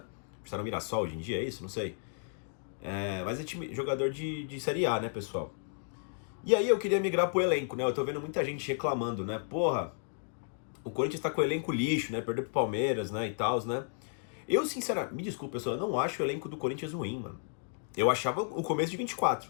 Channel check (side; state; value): right; silent; digital silence